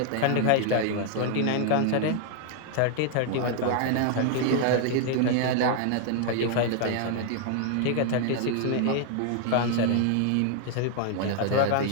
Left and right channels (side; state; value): both; different; correlation 0.00